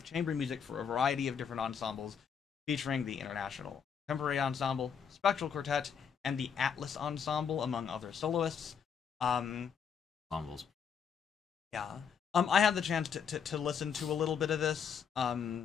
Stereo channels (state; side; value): quieter; right; 7.1 dB